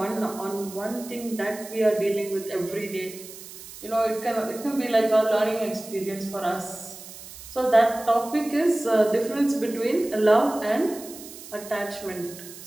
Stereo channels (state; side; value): noise; right; hiss, 15 dB below the sound